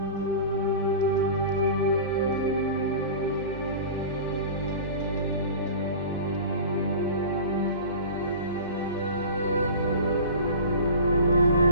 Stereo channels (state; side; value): inverted; both; correlation -0.36